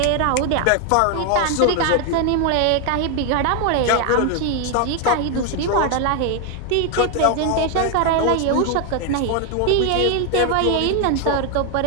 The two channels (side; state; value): both; different; correlation 0.01